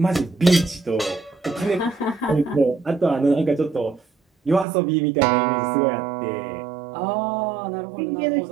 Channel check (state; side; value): drops out; left; at 4.7 s